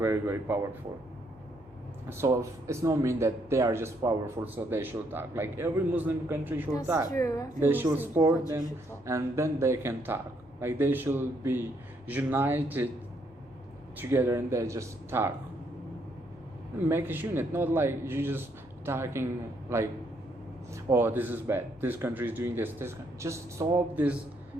very powerful. So it's not mean that they are just powerful, so they should talk. Like, every Muslim country should That's talk. true. Every They should Muslim support country them, should talk. and then they can talk. Like, they should be united together, and they just talk. Make a unit, not like you just talking like, oh, this is bad. This country is doing this. Just stop this.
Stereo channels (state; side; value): normal; both; correlation 0.72